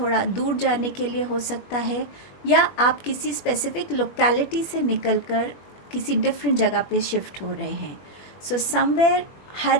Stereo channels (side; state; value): right; late; 21 ms